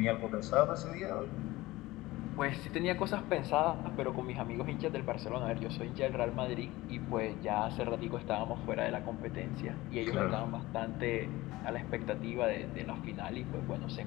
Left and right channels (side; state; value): right; quieter; 19.0 dB